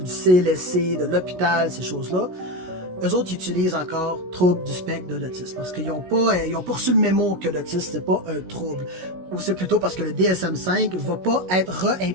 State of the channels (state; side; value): late; left; 16 ms